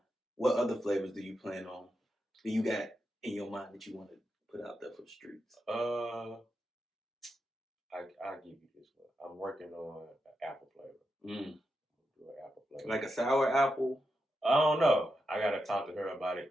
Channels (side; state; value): both; normal; correlation 0.87